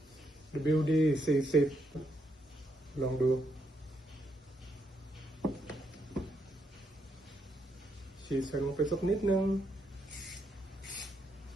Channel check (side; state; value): both; normal; correlation 0.78